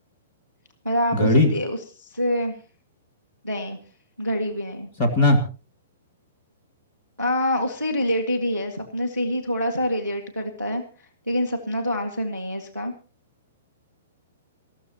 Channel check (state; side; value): inverted; both; correlation -0.61